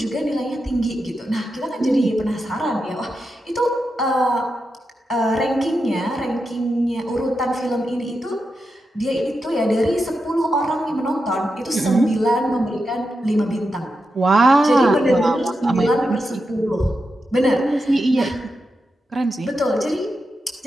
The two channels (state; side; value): normal; both; correlation 0.88